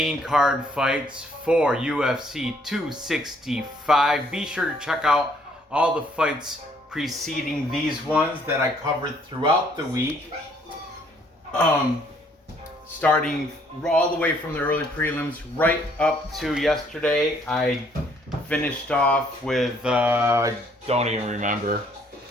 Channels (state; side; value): normal; both; correlation 0.65